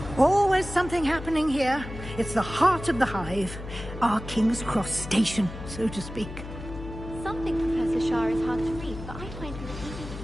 Always something happening here. It's the heart of the hive. Our King's Cross station, so to speak. Something Professor Shah is hard to read, but I find her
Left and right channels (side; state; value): left; noise; hum, 11 dB below the sound